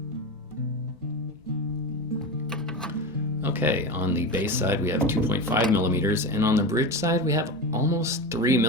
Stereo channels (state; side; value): normal; both; correlation 0.22